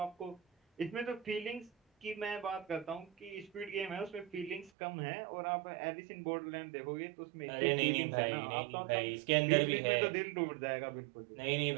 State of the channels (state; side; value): drops out; left; at 4.7 s